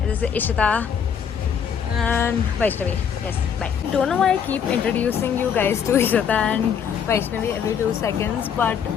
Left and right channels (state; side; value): quieter; right; 7.6 dB